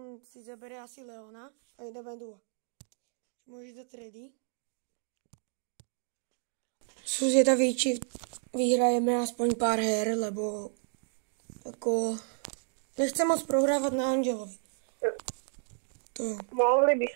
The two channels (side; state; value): left; silent; 56 dB below the other